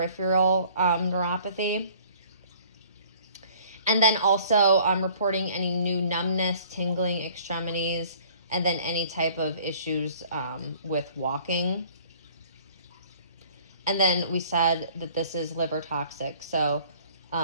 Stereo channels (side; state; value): both; inverted; correlation -0.54